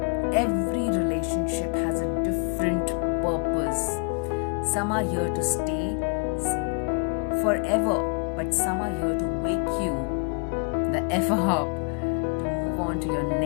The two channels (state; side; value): quieter; right; 36.9 dB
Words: Every relationship has a different purpose. Some are here to stay forever, but some are here to wake you the F up to move on to your